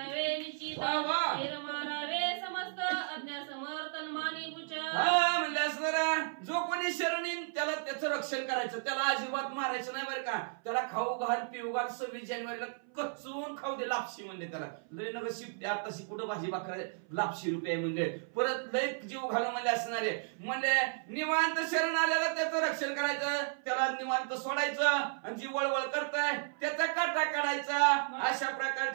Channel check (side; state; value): left; silent; 55 dB below the other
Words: निश्चित वा वा. हेर मारावे समस्त अज्ञा समर्थन मानी पुचा. हा म्हणले असणारा जो कोणी शरण येईल त्याला त्याचं रक्षण करायचं. त्याला अजिबात मारायचं नाही बरं का. त्याला खाऊ घाल पिऊ घाल. 26 जानेवारीला कचून खाऊ दे. लापशी म्हणले त्याला. लय नग शिफ्ट आताशी कुठं भाजी भाकर लापशी रुपये म्हणले. परत लय जीव घालू म्हणले असणारे म्हणले निवांत शरण आलेला त्याचं रक्षण करायचं. त्याला निवांत सोडायचं आणि जी वळवळ करताय त्याचा काटा काढायचा. अशा